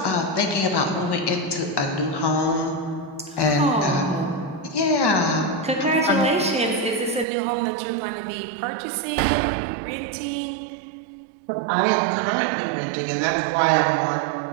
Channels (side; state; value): left; drops out; at 7.2 s